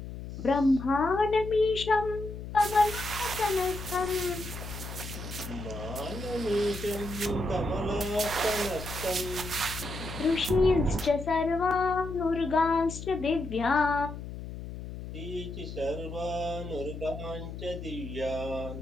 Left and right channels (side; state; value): left; noise; hum, 9 dB below the sound